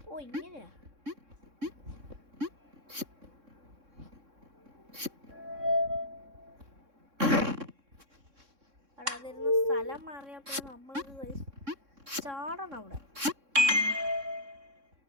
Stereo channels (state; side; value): late; left; 3.6 ms